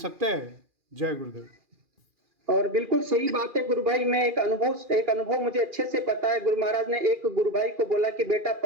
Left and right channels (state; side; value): late; left; 2.4 ms